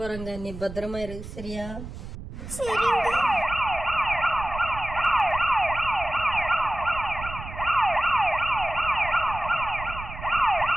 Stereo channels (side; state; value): right; noise; rumble, 11 dB below the sound